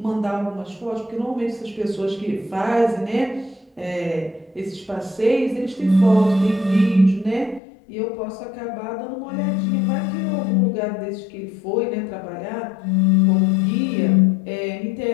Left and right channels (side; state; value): right; drops out; at 7.6 s